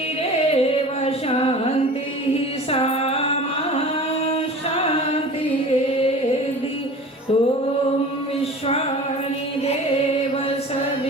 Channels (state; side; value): normal; both; correlation 0.39